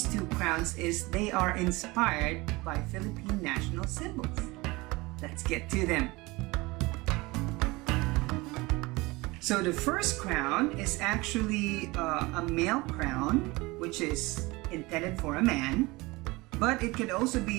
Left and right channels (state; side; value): quieter; left; 22.8 dB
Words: two crowns is they are inspired by Philippine National Symbols. Let's get to them. So the first crown is actually a male crown, which is intended for a man. But it could also